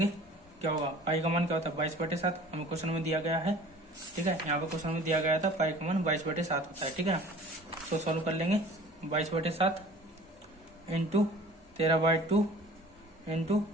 क्या होगा पाई का मान क्या होता है 22/7, हमें क्वेश्चन में दिया गया है, ठीक है। यहाँ पे क्वेश्चन में दिया गया था पाई का मान 22/7 होता है, ठीक है ना। तो सॉल्व कर लेंगे 22/7 इंटू 13/2 इंटू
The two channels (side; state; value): both; normal; correlation 0.46